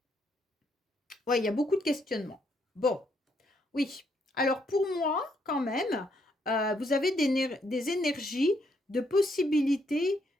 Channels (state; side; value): normal; both; correlation 0.74